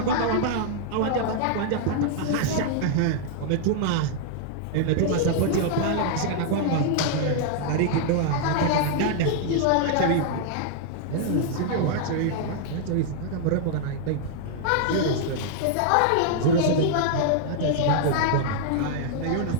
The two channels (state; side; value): different; both; correlation -0.01